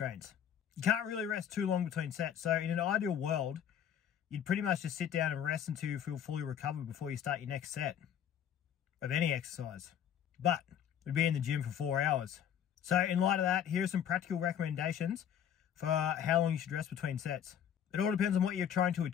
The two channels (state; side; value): quieter; right; 9.2 dB